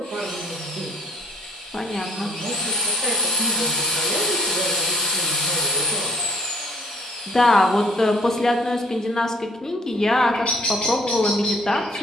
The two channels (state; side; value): normal; both; correlation 0.59